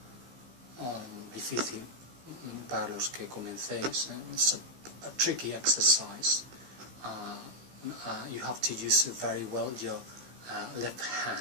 difícil para los que comencéis. It's a tricky exercise. You have to use very well your left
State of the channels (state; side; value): late; left; 15 ms